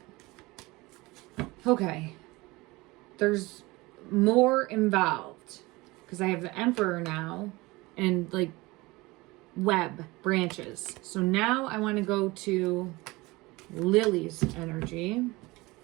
Okay. There's more involved because I have the Emperor now and like web branches. So now I want to go to Lily's energy.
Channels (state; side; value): quieter; left; 22.0 dB